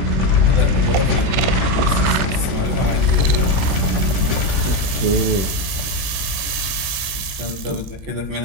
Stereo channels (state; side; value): late; left; 21 ms